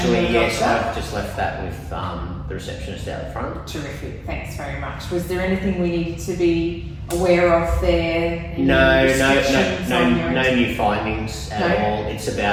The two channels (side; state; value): both; identical; correlation 1.00